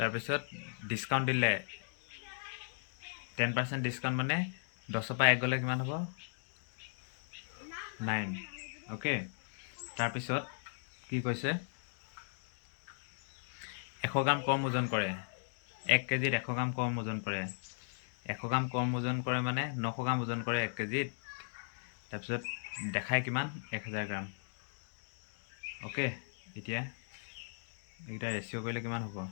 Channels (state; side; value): silent; right; digital silence